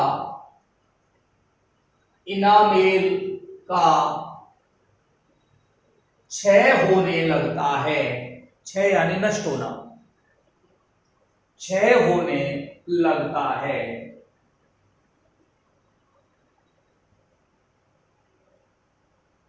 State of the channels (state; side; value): identical; both; correlation 1.00